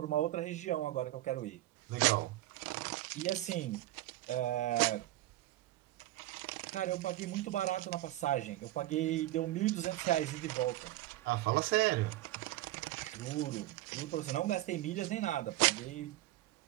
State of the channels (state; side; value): quieter; left; 16.0 dB